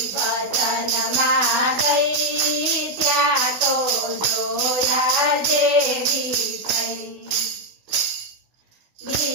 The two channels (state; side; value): late; left; 16 ms